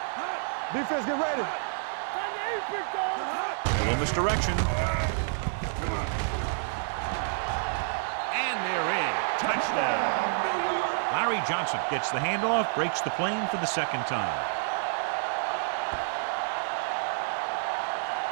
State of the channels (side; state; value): left; silent; 59 dB below the other